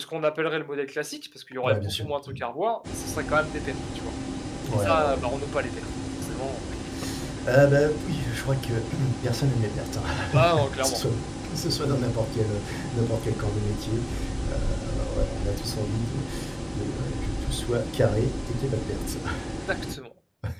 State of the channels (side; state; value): both; identical; correlation 1.00